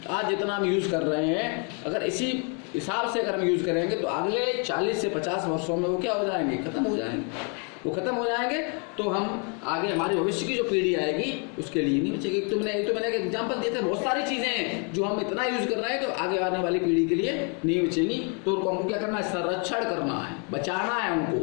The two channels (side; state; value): right; quieter; 37.5 dB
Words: आज जितना हम यूज़ कर रहे हैं, अगर इसी हिसाब से अगर हम यूज़ करेंगे तो अगले 40 से 50 वर्षों में वो क्या हो जाएंगे, खत्म हो जाएंगे। वो खत्म हो जाएंगे तो हम आगे हमारी भविष्य की जो पीढ़ी आएगी उसके लिए नहीं बचेगी। तो मैंने एक एग्जांपल दिए थे, बहुत सारी चीज़ें हैं जो हम इतना यूज़ कर रहे हैं तो आगे आने वाली पीढ़ी के लिए नहीं बचेंगी। तो उनको हमको क्या करना है, संरक्षण करना है, बचाना है